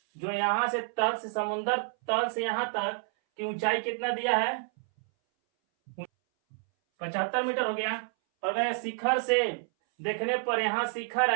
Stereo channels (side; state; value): left; silent; 58 dB below the other